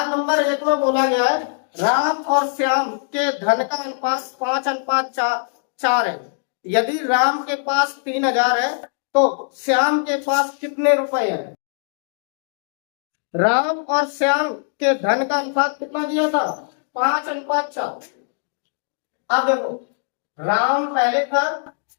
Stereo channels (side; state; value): right; silent; digital silence